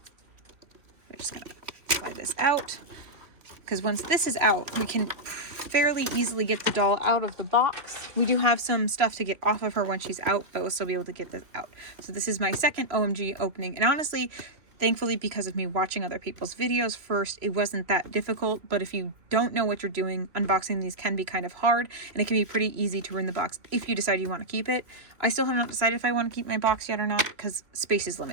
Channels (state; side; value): late; left; 2.9 ms